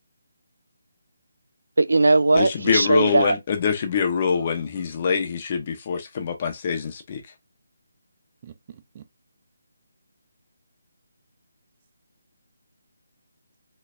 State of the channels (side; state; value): both; inverted; correlation -0.83